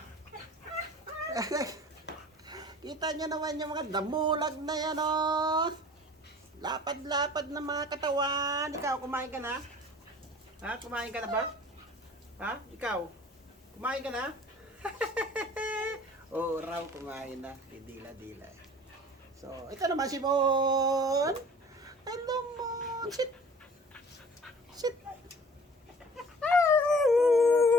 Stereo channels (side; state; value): both; normal; correlation 0.47